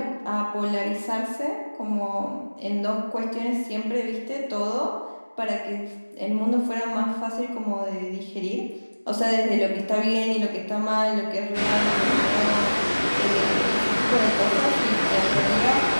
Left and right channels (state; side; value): inverted; both; correlation -1.00